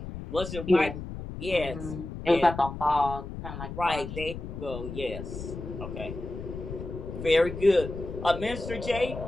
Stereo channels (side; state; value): left; noise; rumble, 9 dB below the sound